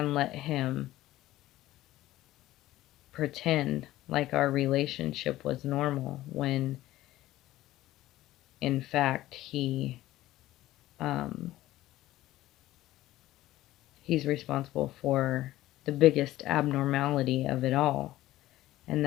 let him pretend like our relationship was normal when in fact he's responsible for the biggest abnormality of it all, and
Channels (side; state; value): right; quieter; 15.7 dB